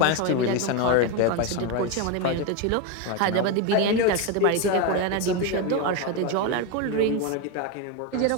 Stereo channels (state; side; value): different; both; correlation 0.03